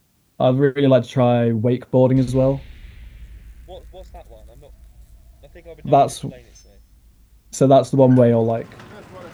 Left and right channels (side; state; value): both; identical; correlation 1.00